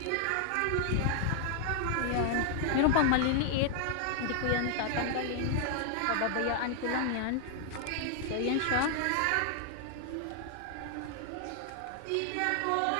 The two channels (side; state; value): both; different; correlation 0.00